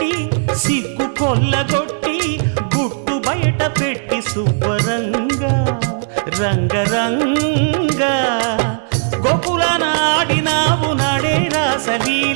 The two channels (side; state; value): left; silent; digital silence